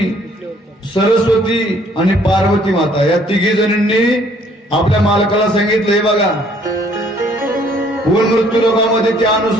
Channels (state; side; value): normal; both; correlation 0.61